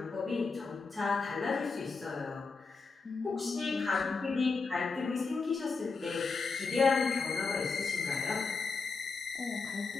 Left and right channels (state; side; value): quieter; right; 4.5 dB